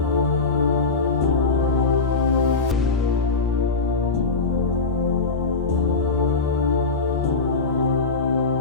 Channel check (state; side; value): quieter; right; 4.1 dB